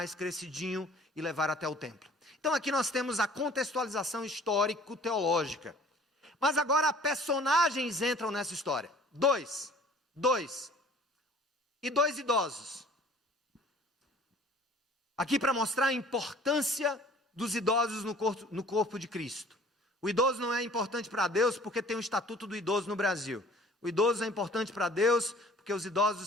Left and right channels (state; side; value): normal; both; correlation 0.50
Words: crescidinho e levar até o templo. Então aqui nós temos a contextualização histórico-teológica. Mas agora personagens entram nessa história. Dois e 2 idosos. Aqui para mostrar a importância dos idosos no corpo de Cristo. O idoso não é importante para Deus porque tem o estatuto do idoso no Brasil. O idoso é importante para Deus porque os